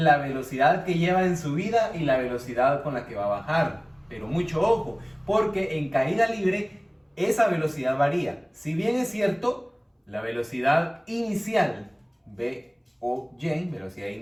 velocidad que lleva en subida y la velocidad con la que va a bajar. Pero mucho ojo, porque en caída libre esa velocidad varía. Si bien es cierto, la velocidad inicial VOY, velocidad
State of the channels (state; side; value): identical; both; correlation 1.00